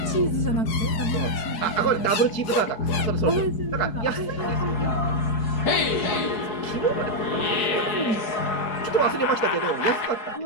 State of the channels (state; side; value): late; right; 4.7 ms